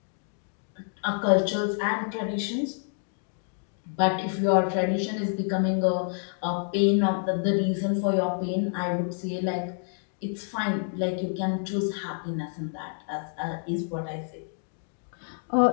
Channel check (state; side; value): silent; right; 59 dB below the other